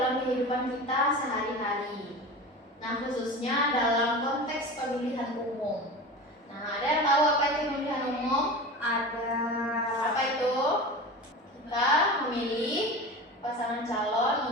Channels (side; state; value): both; normal; correlation 0.31